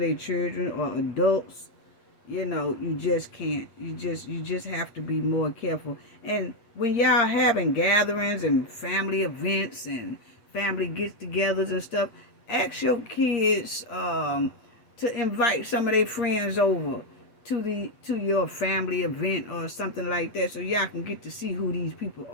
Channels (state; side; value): late; right; 8.5 ms